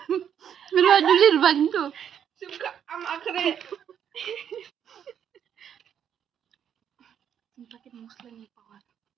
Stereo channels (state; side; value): quieter; left; 8.8 dB